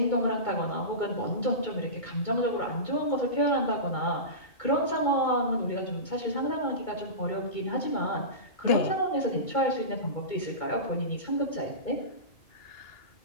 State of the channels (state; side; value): late; right; 2.2 ms